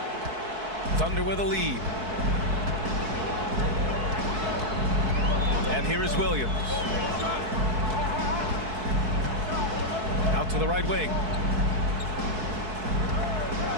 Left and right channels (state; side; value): late; left; 4.6 ms